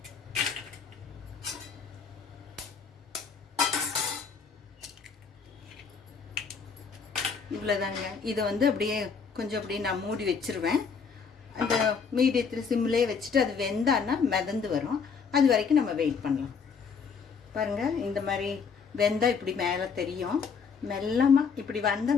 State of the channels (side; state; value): right; quieter; 5.7 dB